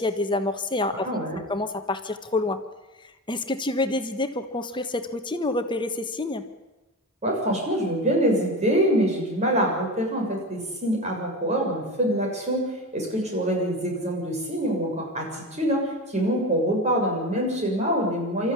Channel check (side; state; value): both; normal; correlation 0.26